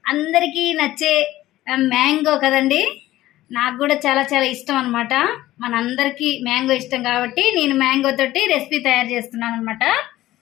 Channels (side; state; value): right; quieter; 15.6 dB